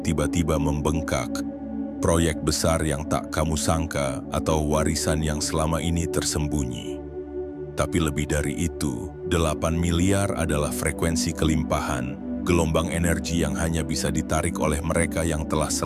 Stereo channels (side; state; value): both; identical; correlation 1.00